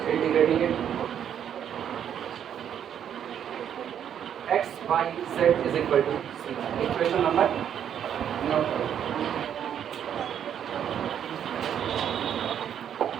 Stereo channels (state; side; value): quieter; left; 9.2 dB